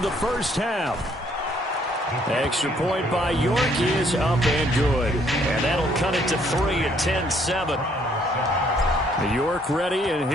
the 1st half. Extra point by York is up and good. And that'll cut it to 3 at 10-7. York ready, and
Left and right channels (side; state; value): both; normal; correlation 0.66